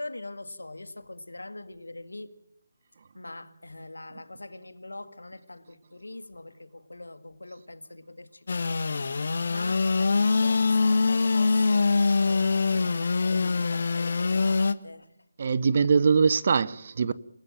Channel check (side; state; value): both; inverted; correlation -0.90